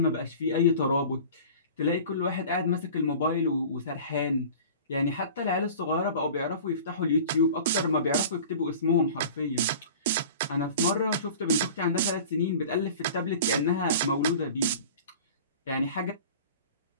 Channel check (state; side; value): inverted; both; correlation -0.40